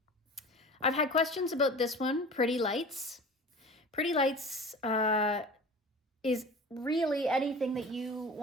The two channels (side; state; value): both; normal; correlation 0.38